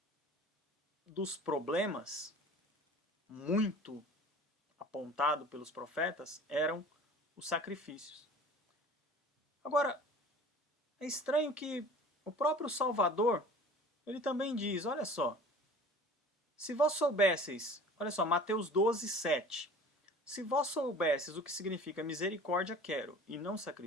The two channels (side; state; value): both; normal; correlation 0.44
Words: dos problemas muito apontado pelos profetas eram os sacrifícios. Agora, é estranho que o próprio Salvador, ele também diz, olha só, se vós soubesseis, olha só, Mateus 12:7, se vós soubesseis o que significa misericórdia quero e não